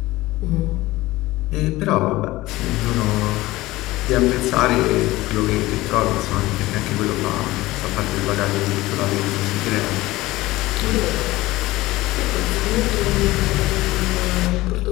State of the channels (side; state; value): right; quieter; 18.6 dB